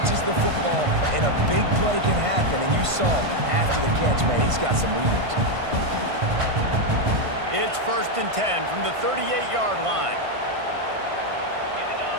the football, and a big play can happen. And you saw after the catch, man. He's got some wheels. It's 1st and 10 from the 38-yard line.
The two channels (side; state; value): left; late; 1.5 ms